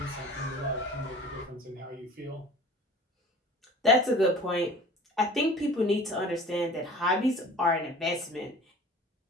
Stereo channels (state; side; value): normal; both; correlation 0.44